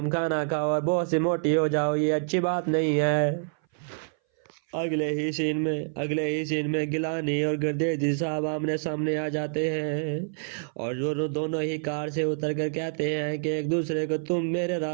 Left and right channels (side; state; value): left; silent; 59 dB below the other